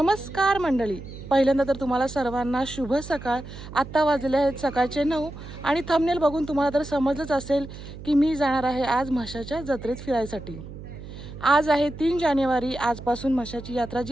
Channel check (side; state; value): right; noise; hum, 13 dB below the sound